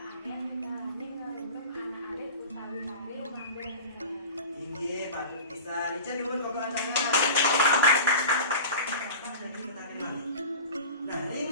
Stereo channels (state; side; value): inverted; both; correlation -0.35